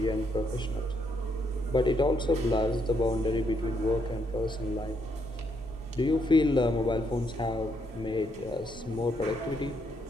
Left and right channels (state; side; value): normal; both; correlation 0.75